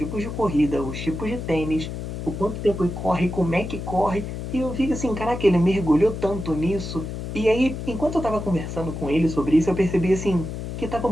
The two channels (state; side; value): noise; left; hum, 6 dB below the sound